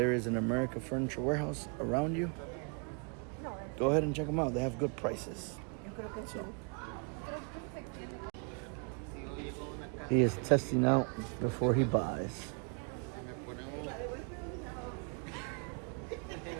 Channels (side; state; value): left; quieter; 39.5 dB